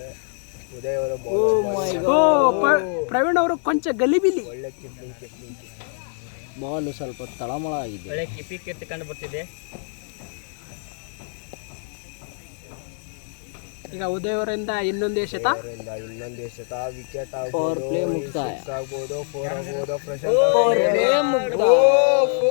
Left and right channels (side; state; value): right; silent; digital silence